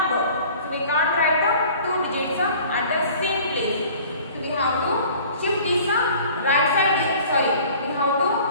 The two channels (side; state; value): both; inverted; correlation -0.48